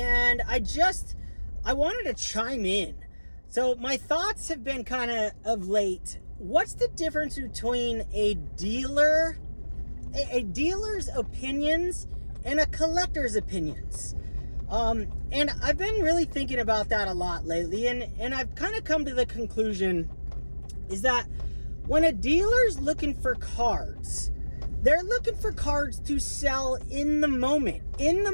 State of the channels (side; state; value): both; inverted; correlation -1.00